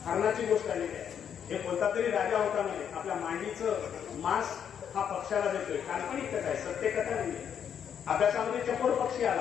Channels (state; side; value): quieter; right; 8.4 dB